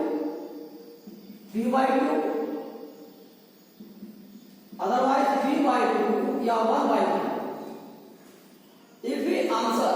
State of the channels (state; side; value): identical; both; correlation 1.00